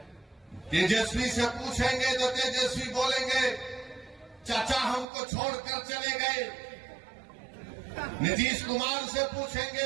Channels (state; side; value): drops out; left; at 5.1 s